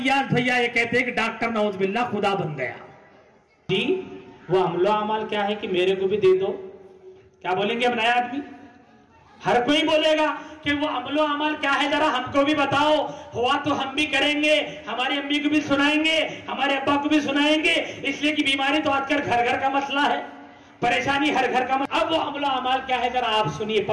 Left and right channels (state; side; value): identical; both; correlation 1.00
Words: भैया ये कहते हैं कि डॉक्टर नौज बिल्लाह खुदा बन गया जी। वो अमलो अमाल क्या है कि मेरे को भी दे दो, क्या बोलेंगे अब नया आदमी? हर कोई बोलेगा कि वो अमलो अमल क्या है, जरा हमको भी बताओ। हुआ तो हम भी करेंगे, हमारी अम्मी को भी सुनाएंगे, हमारे अब्बा को भी सुनाएंगे। इसलिए कि बीमारी तो आजकल घर घर का मसला है, परेशानी हर घर का। अब वो अमलो अमल क्या है जरा आप सुनिए,